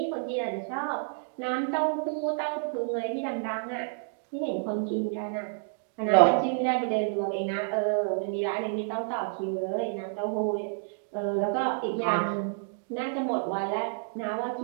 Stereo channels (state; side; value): silent; left; digital silence